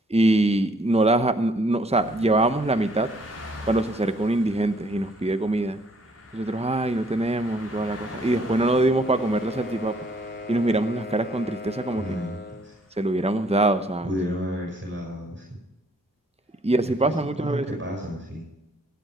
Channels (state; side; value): normal; both; correlation 0.64